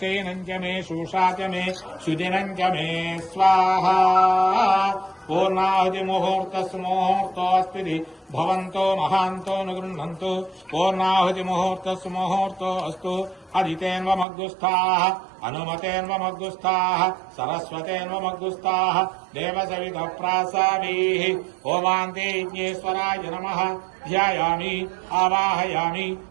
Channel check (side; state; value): left; drops out; at 14.2 s